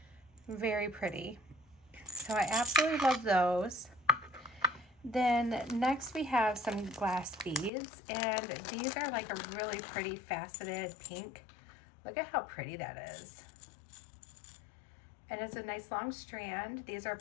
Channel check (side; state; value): right; drops out; at 7.7 s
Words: Very pretty. So I absolutely love those. Then next we have some glass beads, and these are like a really pretty faceted pink. Look at how pretty that is. And it's a nice long strand. These are